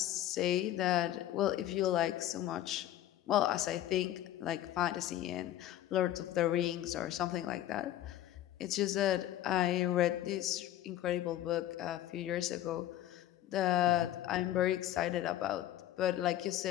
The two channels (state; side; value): quieter; right; 13.1 dB